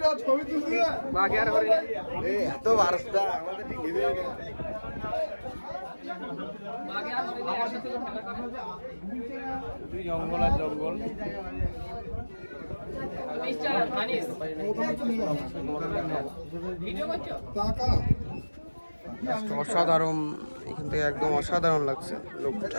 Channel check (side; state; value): both; inverted; correlation -1.00